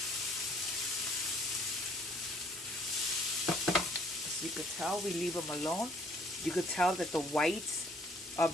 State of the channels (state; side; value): normal; both; correlation 0.61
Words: As you could tell, we leave them alone. You could tell that the whites